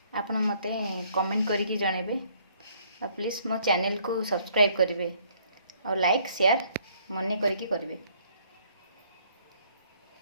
आपण मते कमेंट करके जणेबे। और प्लीज़ मो चैनल को सब्सक्राइब करेंगे और लाइक शेयर मन करके करेंगे।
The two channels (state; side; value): inverted; both; correlation -0.63